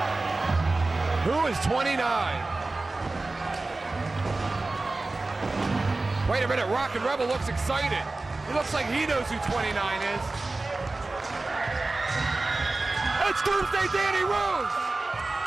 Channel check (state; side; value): quieter; left; 3.2 dB